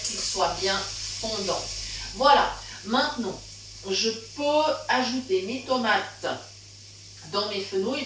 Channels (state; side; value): identical; both; correlation 1.00